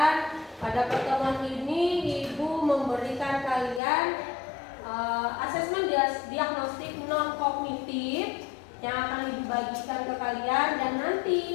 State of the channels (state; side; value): drops out; right; at 3.8 s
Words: Pada pertemuan ini Ibu memberikan kalian asesmen diagnostik non kognitif yang akan Ibu bagikan ke kalian dan nanti